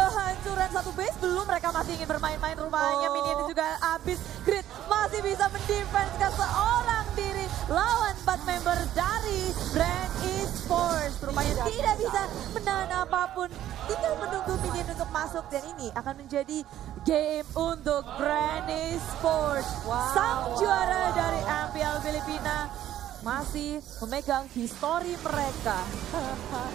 satu base. Belum, mereka masih ingin bermain-main rupanya. Minion juga habis. Grid masih bisa mendefense ke seorang diri lawan 4 member dari Brand Esports. Rupanya tidak bisa menahan apapun. Tinggal menunggu minion untuk masuk dan ini akan menjadi game untuk Brand Esports. Sang juara dari MPL Filipina masih memegang histori mereka.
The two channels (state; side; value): quieter; left; 12.3 dB